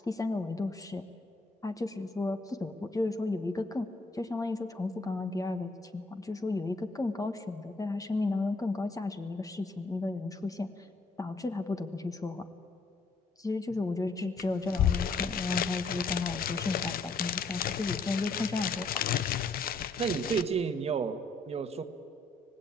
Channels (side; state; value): right; quieter; 3.1 dB